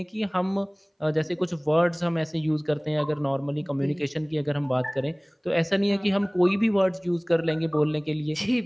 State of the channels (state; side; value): identical; both; correlation 1.00